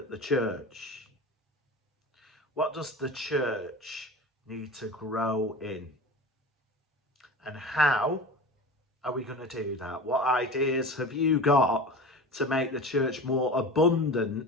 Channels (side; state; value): both; normal; correlation 0.33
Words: the church. What does the church need to grow in? And how are we going to do that? What ideas have you got to make the church more abundant